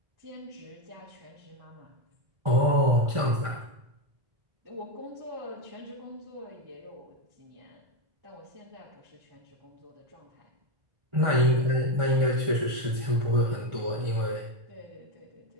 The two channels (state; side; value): late; left; 1.5 ms